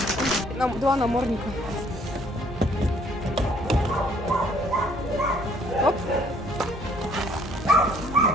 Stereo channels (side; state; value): both; normal; correlation 0.61